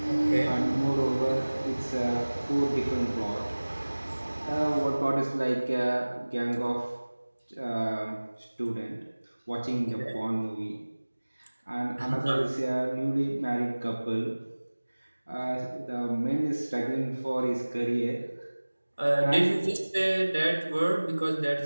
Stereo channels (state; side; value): inverted; both; correlation -1.00